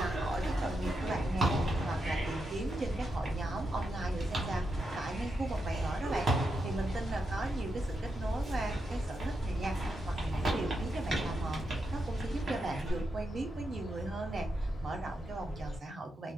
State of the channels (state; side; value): normal; both; correlation 0.84